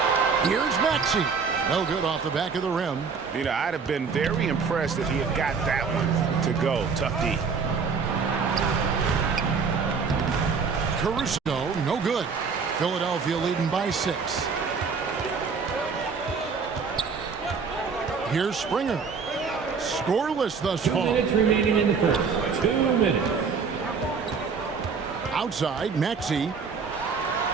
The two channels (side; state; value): left; quieter; 5.4 dB